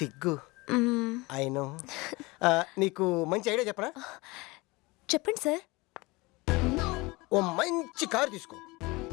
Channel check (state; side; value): quieter; right; 23.6 dB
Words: I know. నీకు మంచి ఐడియా చెప్పనా? చెప్పండి సార్. ఓ మంచి కారు తీసుకో.